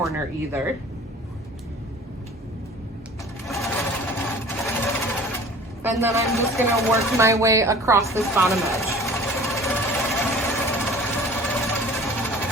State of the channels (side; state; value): both; normal; correlation 0.44